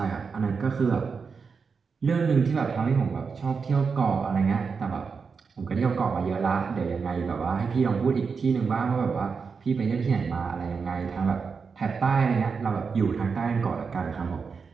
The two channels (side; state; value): left; quieter; 5.4 dB